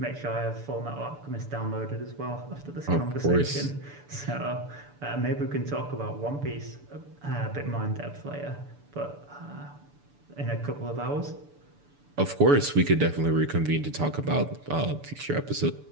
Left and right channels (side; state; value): left; late; 6.9 ms